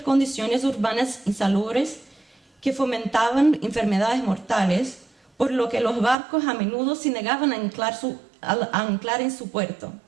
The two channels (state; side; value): drops out; left; at 6.2 s